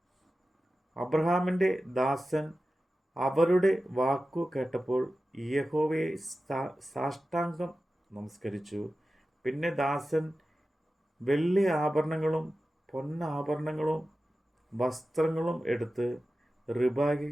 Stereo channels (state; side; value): normal; both; correlation 0.94